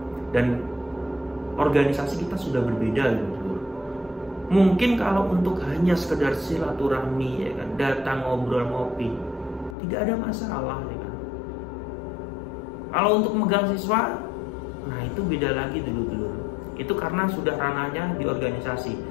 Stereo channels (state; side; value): drops out; right; at 9.8 s